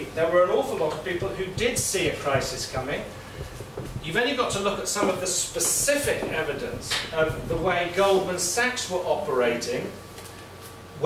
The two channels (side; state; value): both; identical; correlation 1.00